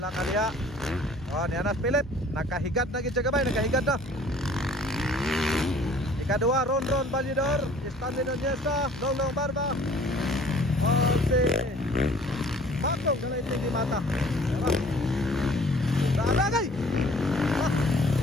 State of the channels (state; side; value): normal; both; correlation 0.53